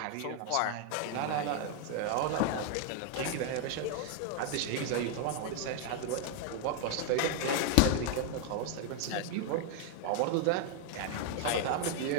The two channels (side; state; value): both; different; correlation 0.00